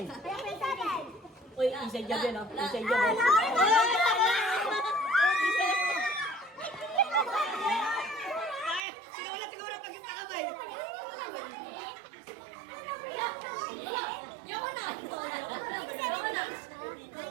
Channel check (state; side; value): drops out; left; at 8.8 s